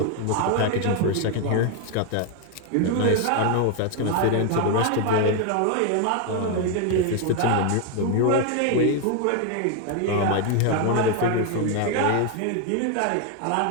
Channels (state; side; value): different; both; correlation 0.01